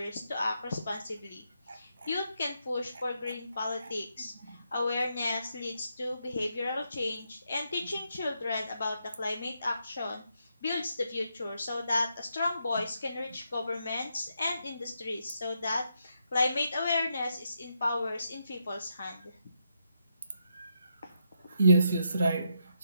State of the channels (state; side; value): inverted; both; correlation -0.80